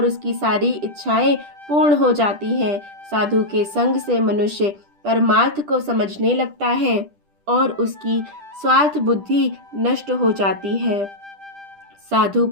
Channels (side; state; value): left; late; 10 ms